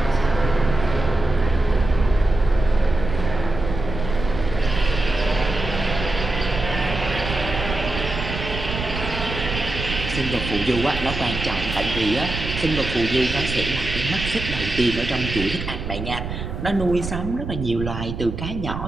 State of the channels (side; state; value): right; noise; rumble, 6 dB below the sound